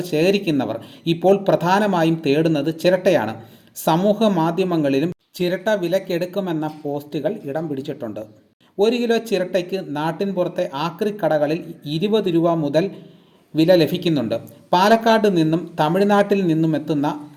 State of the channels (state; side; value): identical; both; correlation 1.00